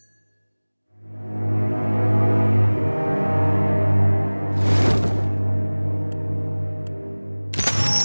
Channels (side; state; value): both; inverted; correlation -1.00